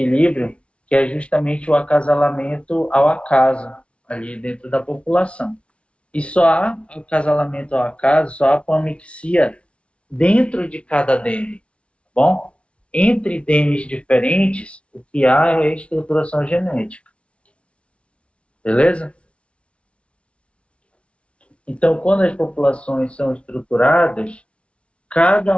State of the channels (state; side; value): late; right; 0.060 ms